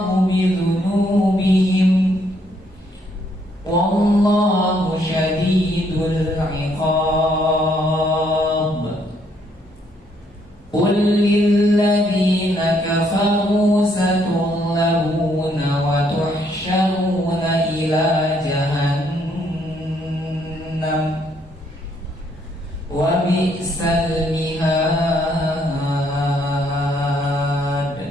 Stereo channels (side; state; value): both; normal; correlation 0.70